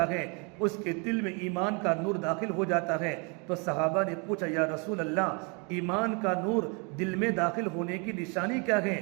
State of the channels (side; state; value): left; quieter; 33.4 dB